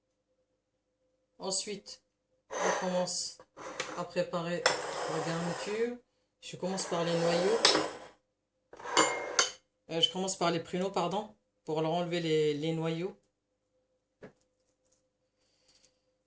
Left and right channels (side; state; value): both; identical; correlation 1.00